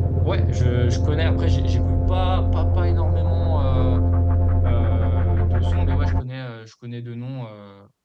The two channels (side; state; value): both; identical; correlation 1.00